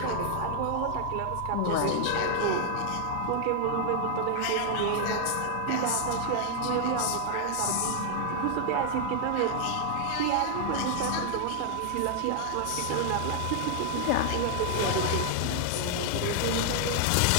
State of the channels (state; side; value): different; both; correlation 0.00